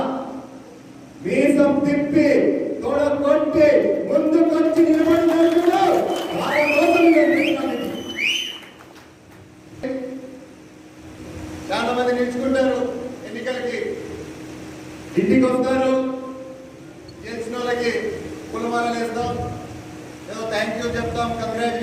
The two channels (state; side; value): identical; both; correlation 1.00